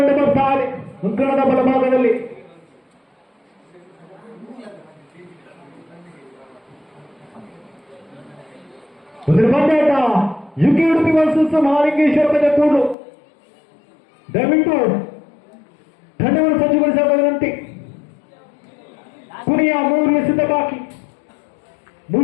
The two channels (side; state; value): right; drops out; at 13.0 s